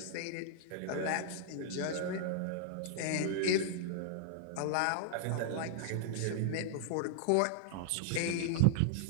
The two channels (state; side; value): different; both; correlation -0.01